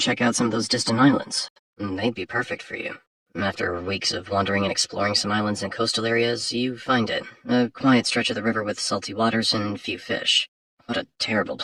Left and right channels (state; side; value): identical; both; correlation 1.00